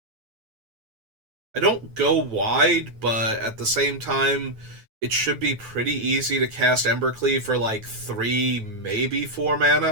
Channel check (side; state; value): left; late; 9.2 ms